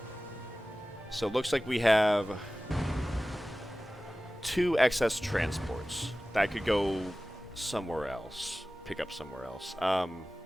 So it looks like we have 2 excess transports that could go somewhere else. Pick up somewhere else.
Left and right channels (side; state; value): both; normal; correlation 0.97